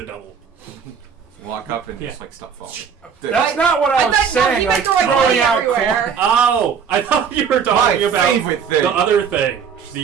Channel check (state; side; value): quieter; left; 6.9 dB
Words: double. walk up and Yeah. just like stop falling. That's not what I was thought- no, saying. he Like meant throwing throwing money out everywhere. coins. Oh, I thought you were My talking about favorite thing. the other thing.